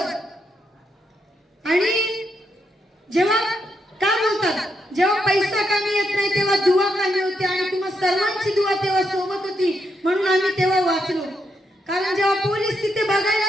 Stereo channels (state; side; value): normal; both; correlation 0.80